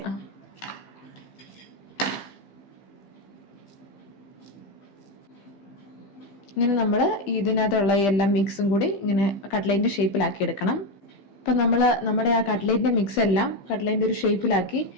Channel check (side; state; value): right; late; 15 ms